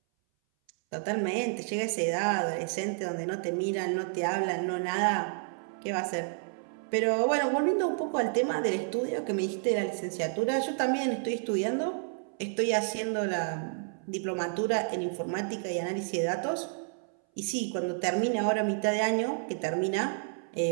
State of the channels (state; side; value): silent; left; 58 dB below the other